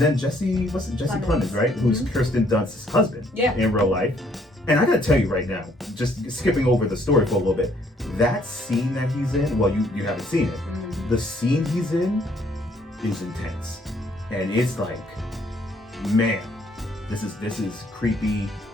Jesse Plemons, right? Who's Kirsten Dunst's husband in real life. And I gotta tell you right now, just skipping over the story for a little bit, that scene that he's in, well, you haven't seen it. The scene he's in is intense. And it's like, man, this is creepy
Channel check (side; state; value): both; normal; correlation 0.66